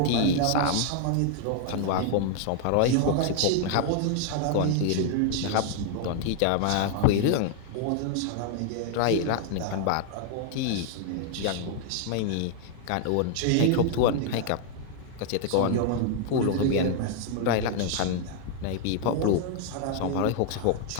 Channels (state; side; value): different; both; correlation 0.00